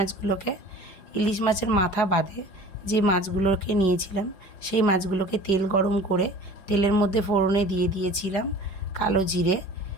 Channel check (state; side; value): late; right; 5.2 ms